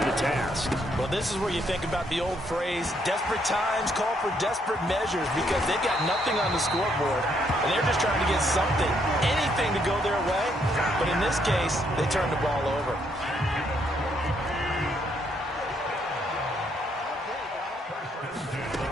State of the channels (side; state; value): both; normal; correlation 0.72